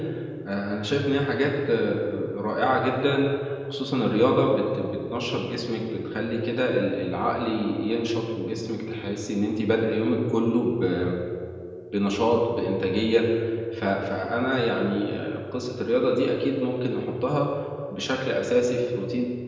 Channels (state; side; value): identical; both; correlation 1.00